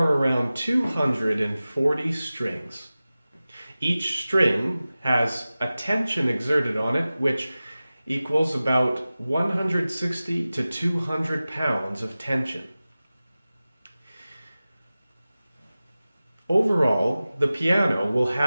around 240 strings. Each string has a tension exerted on it, which equals about 160 to 200 pounds of tension. Overall, the piano will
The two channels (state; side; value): inverted; both; correlation -0.96